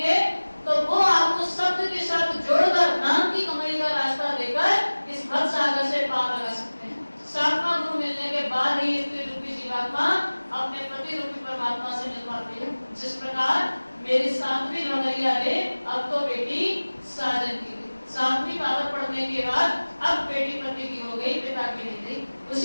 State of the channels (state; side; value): inverted; both; correlation -1.00